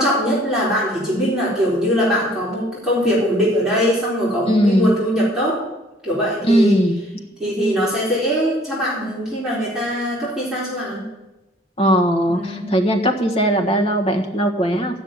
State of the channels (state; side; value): normal; both; correlation 0.56